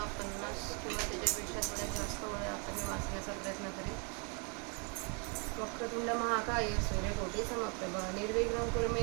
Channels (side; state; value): left; quieter; 36.0 dB